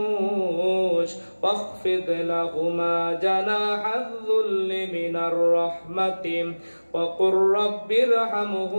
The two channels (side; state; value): both; inverted; correlation -1.00